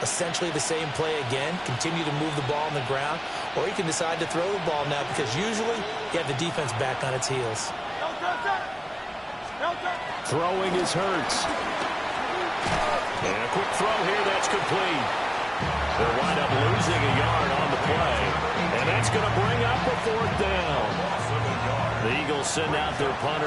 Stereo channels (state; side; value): identical; both; correlation 1.00